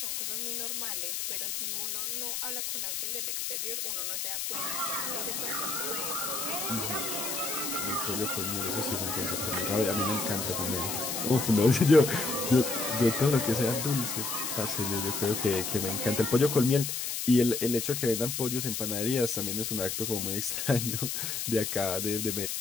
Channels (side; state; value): left; noise; hiss, 2 dB below the sound